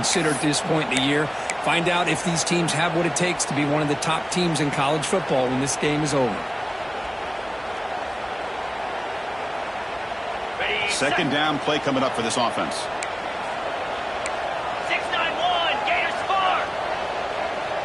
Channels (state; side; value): identical; both; correlation 1.00